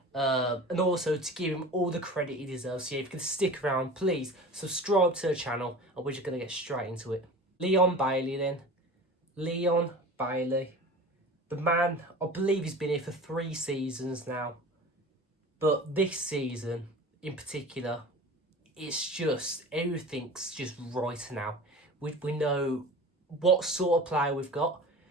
and also to give him all the credit he deserves. So yeah, if you can stick around, please subscribe to the channel, and we're just going to get straight into it. Leon Bailey then. Leon Bailey. The man, I believe he's been here for 3 seasons now. But this season, in particular, it's just, everything's just right now. We know what sort of player we've got.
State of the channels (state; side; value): normal; both; correlation 0.37